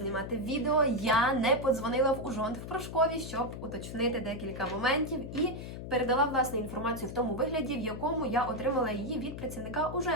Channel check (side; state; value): left; noise; hum, 9 dB below the sound